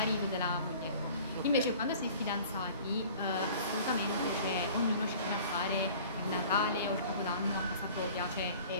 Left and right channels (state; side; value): inverted; both; correlation -0.47